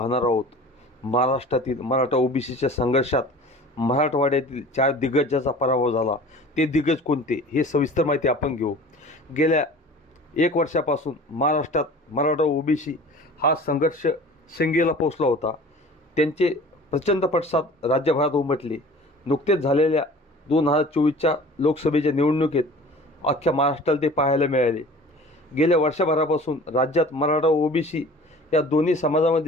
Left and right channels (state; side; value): normal; both; correlation 0.43